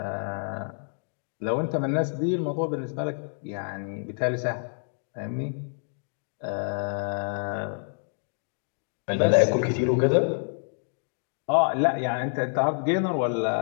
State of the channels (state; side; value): silent; right; 60 dB below the other